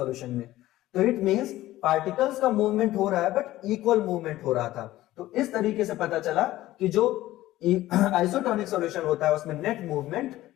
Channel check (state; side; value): quieter; right; 15.7 dB